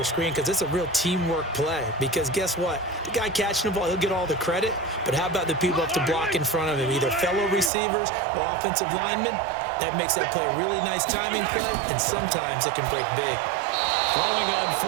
screen because it's a real teamwork play. Because guess what? The guy catching the ball, he'll get all the credit. But how about the people up to block in front of him, either fellow receivers or offensive linemen? That makes that play a really nice timing play, and sometimes it can break big. Throwing on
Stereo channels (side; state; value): left; drops out; at 7.7 s